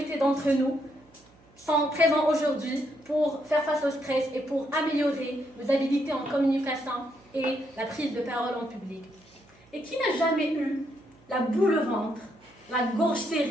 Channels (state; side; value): noise; right; hum, 29 dB below the sound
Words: d'entre nous sont présents aujourd'hui pour faire face au stress et pour améliorer nos habilités en communication et la prise de parole en public. Et qui n'a jamais eu la boule au ventre, la gorge